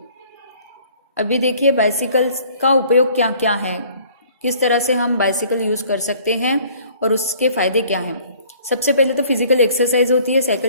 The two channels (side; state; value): both; inverted; correlation -0.55